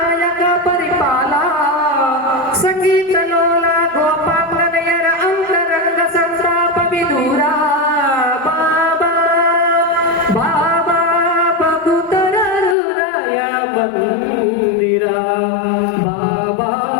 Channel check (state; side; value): drops out; right; at 12.8 s